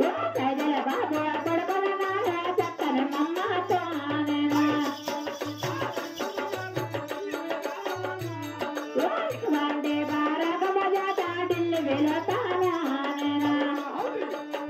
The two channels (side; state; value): both; identical; correlation 1.00